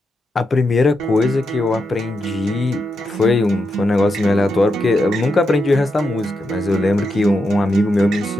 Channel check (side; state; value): both; normal; correlation 0.85